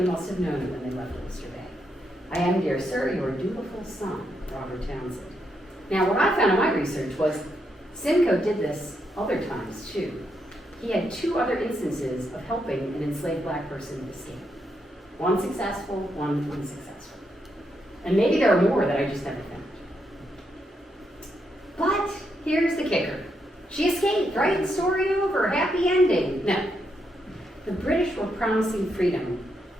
must have known it when they left Oyster Bay. I am, dear sir, your dutiful son, Robert Townsend. Now, what I found in my research was Simcoe did this other times, too. He had 2 other instances of helping an enslaved black person escape. One successful, one unsuccessful. And maybe there are more that I just never found. But here's the kicker. She escaped, right? Story over, happy ending. No. The British were promising freedom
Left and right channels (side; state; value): both; normal; correlation 0.80